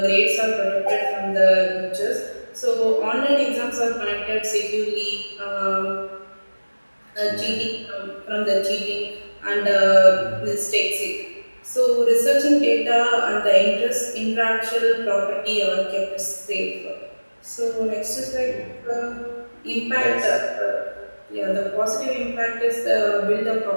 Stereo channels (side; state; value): both; inverted; correlation -1.00